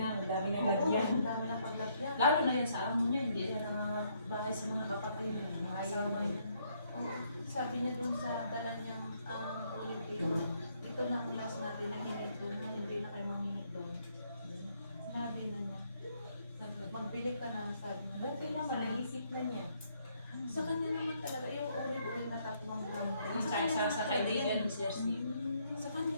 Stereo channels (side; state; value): both; inverted; correlation -0.70